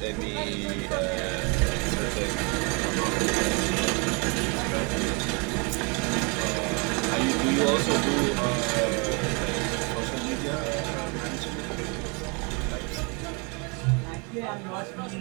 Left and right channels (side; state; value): left; quieter; 32.2 dB